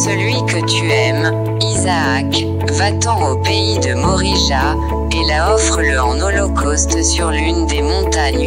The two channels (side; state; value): left; noise; hum, 23 dB below the sound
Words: que tu aimes, Isaac, va-t'en au pays de Morija, et là offre-le en holocauste sur l'une des